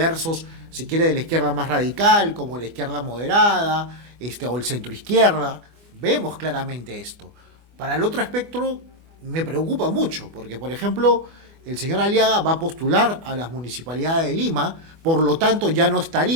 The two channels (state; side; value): late; left; 24 ms